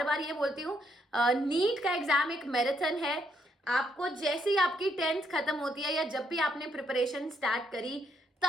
बार ये बोलती हूँ, नीट का एग्जाम एक मैराथन है। आपको जैसे ही आपकी 10th खत्म होती है या जब भी आपने प्रिपरेशन स्टार्ट करी,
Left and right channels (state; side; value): normal; both; correlation 0.74